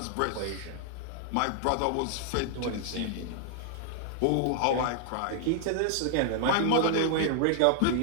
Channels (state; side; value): different; both; correlation -0.01